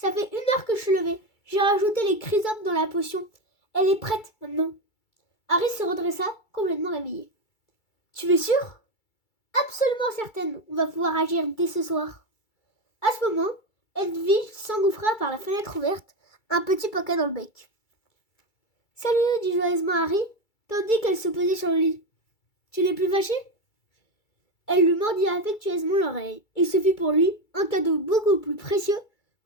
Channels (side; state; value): right; late; 2.3 ms